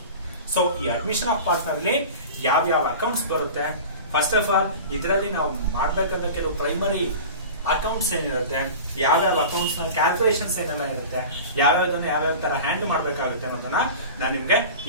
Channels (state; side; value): inverted; both; correlation -0.35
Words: ಸೊ ಈ ಅಡ್ಮಿಷನ್ ಆಫ್ ಪಾರ್ಟ್ನರ್ ಅಲ್ಲಿ ಯಾವ ಅಕೌಂಟ್ಸ್ ಬರುತ್ತೆ? ಫಸ್ಟ್ ಆಫ್ ಆಲ್ ಇದರಲ್ಲಿ ನಾವು ಮಾಡಬೇಕಾದ ಕೆಲವು ಪ್ರೈಮರಿ ಅಕೌಂಟ್ಸ್ ಏನಿರುತ್ತೆ, ಯಾವ್ಯಾವ ಅಕೌಂಟ್ಸ್ ನ ಕ್ಯಾಲ್ಕುಲೇಷನ್ಸ್ ಏನೆಲ್ಲ ಇರುತ್ತೆ, ಯಾವ್ಯಾವ ತರ ಹ್ಯಾಂಡಲ್ ಮಾಡಬೇಕಾಗುತ್ತೆ ಅನ್ನೋದನ್ನ ನಾನು ನಿಮ್ಗೆ